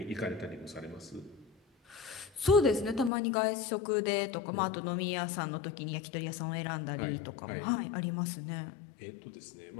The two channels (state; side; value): drops out; right; at 3.1 s